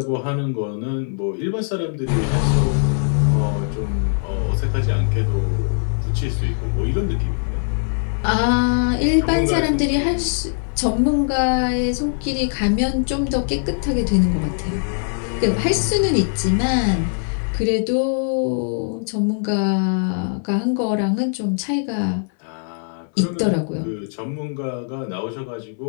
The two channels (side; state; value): right; silent; 65 dB below the other